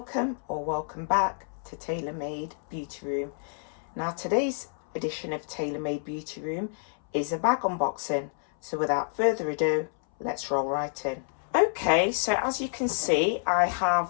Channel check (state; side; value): silent; right; 59 dB below the other